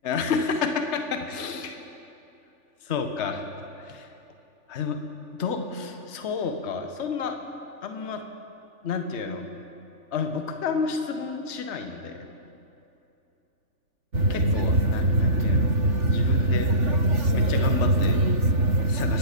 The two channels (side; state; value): left; late; 3.4 ms